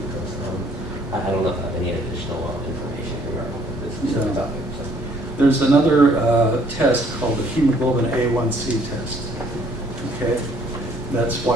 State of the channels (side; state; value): both; normal; correlation 0.61